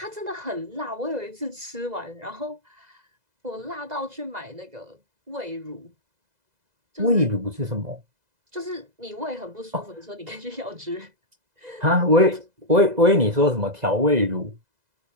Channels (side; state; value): left; late; 2.0 ms